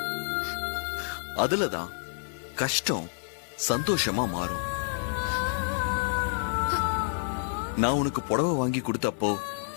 அதுலதான் கஷ்டம் சந்தோஷமா மாறும். நான் உனக்கு புடவை வாங்கி கொடுத்தப்போ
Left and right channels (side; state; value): right; silent; 59 dB below the other